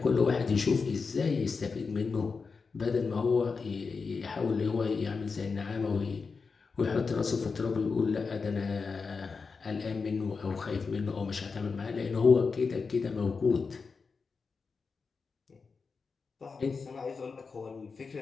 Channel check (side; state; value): right; quieter; 4.9 dB